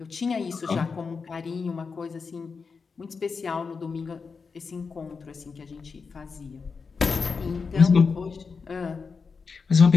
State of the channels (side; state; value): right; quieter; 5.1 dB